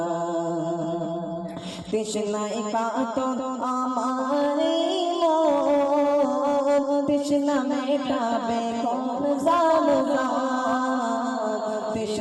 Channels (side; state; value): both; identical; correlation 1.00